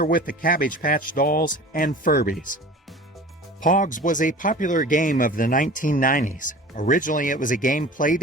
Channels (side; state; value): both; normal; correlation 0.40